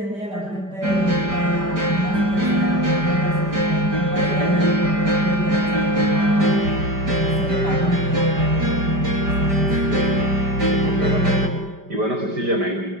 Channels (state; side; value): late; left; 5.1 ms